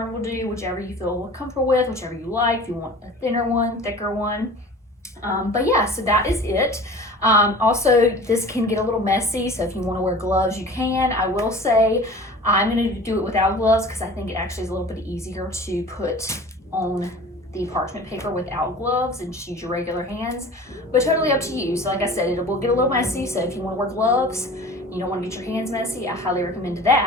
will do, whichever you feel comfortable with, whichever you like. If you want a thinner one, thicker one. But yeah, so that is it. Also, this can get a little messy, so if you want to wear gloves, you can. I will say I'm going to do it without gloves because I think it actually is a little bit easier to put on the parchment paper without gloves and just use your regular hands, but totally up to you. So like I said, it will get a little messy, so if you want to wear gloves, you don't want to get your hands messy, I highly recommend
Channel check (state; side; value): normal; both; correlation 0.41